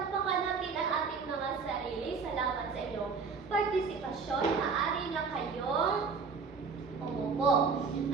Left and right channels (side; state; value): left; quieter; 5.1 dB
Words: natin ang ating mga sarili. Salamat sa inyong partisipasyon. Maaari na kayong umupo.